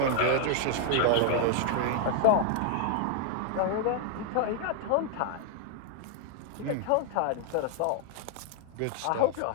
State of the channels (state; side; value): different; both; correlation 0.00